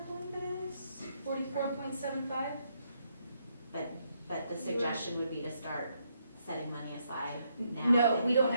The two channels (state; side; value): inverted; both; correlation -0.76